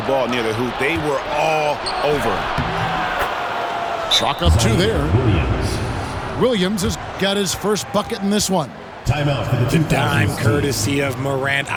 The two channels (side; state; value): both; identical; correlation 1.00